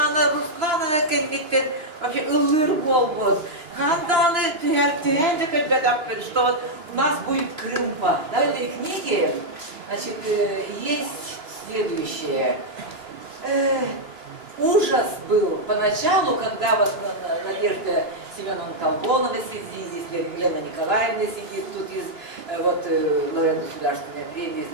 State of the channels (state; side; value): late; left; 3.0 ms